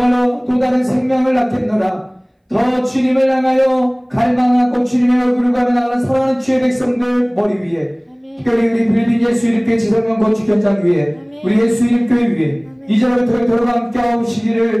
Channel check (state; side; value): identical; both; correlation 1.00